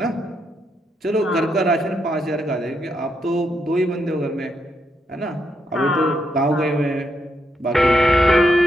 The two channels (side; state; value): both; normal; correlation 0.79